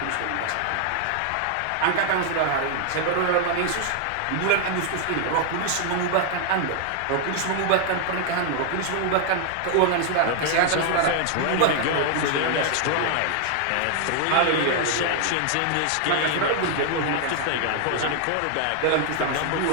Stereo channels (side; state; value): both; different; correlation 0.00